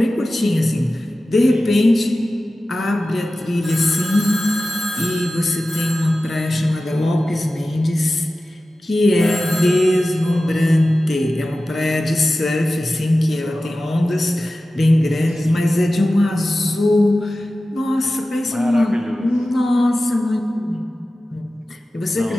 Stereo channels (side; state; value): both; normal; correlation 0.95